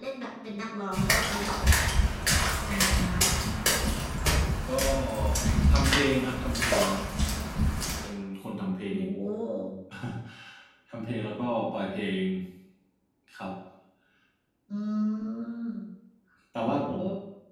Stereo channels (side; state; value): both; identical; correlation 1.00